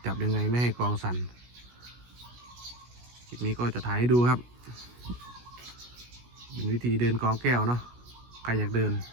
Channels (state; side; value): late; left; 16 ms